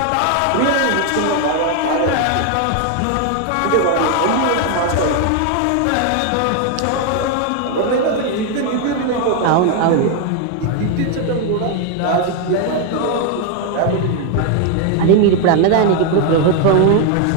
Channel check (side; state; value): both; different; correlation 0.01